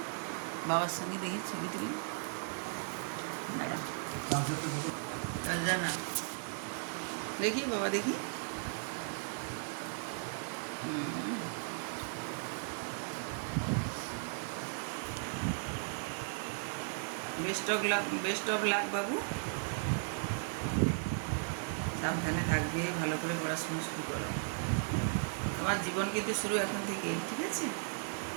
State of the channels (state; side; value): silent; left; digital silence